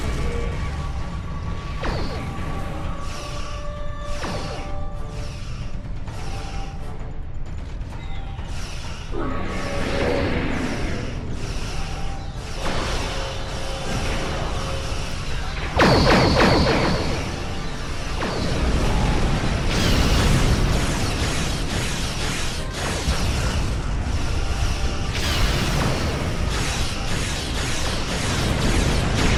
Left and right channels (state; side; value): identical; both; correlation 1.00